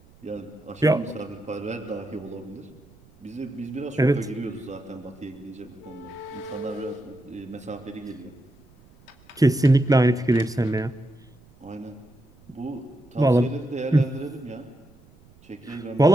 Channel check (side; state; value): right; noise; rumble, 27 dB below the sound